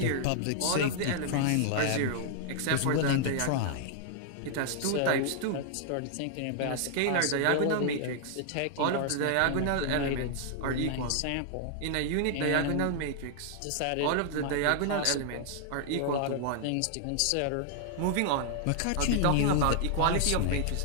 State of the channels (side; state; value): both; different; correlation 0.00